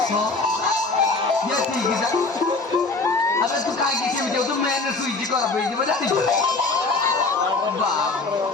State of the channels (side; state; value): right; quieter; 3.7 dB